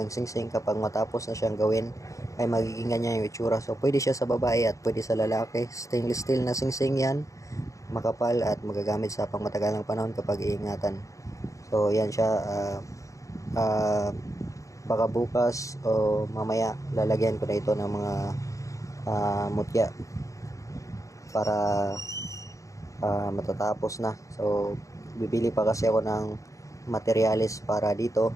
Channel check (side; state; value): right; late; 0.15 ms